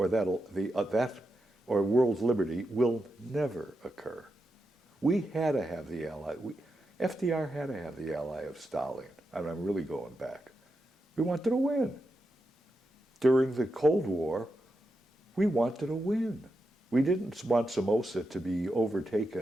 or world liberty will never occur. We had to have the ally. FDR had to have the ally of Stalin. I mean, I'm really going back. We wanted to win. During the Cold War, we wanted to win. We didn't want Somoza to be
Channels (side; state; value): both; normal; correlation 0.87